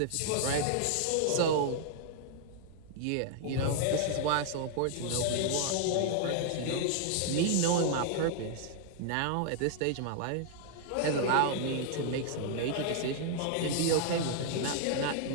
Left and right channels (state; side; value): different; both; correlation 0.00